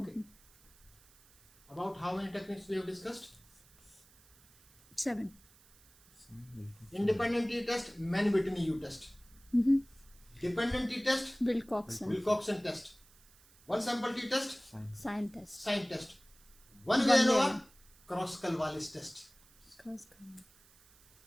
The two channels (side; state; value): right; noise; hiss, 27 dB below the sound